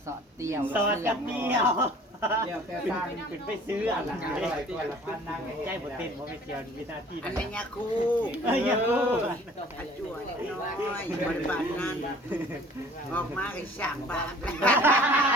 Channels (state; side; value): normal; both; correlation 0.50